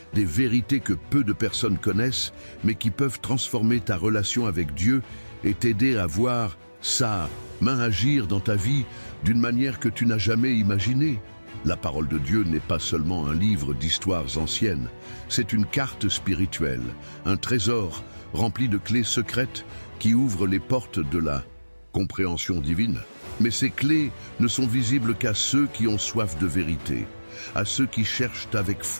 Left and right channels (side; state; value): both; inverted; correlation -1.00